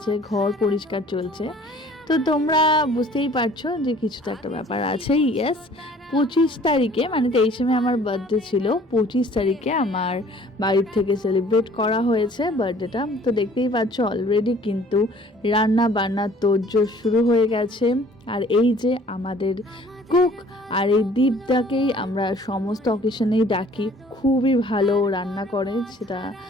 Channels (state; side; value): normal; both; correlation 0.53